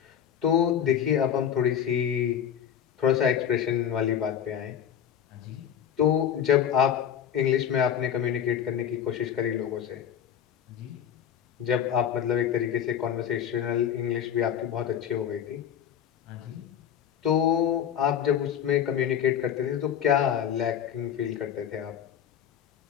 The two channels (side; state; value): right; quieter; 9.2 dB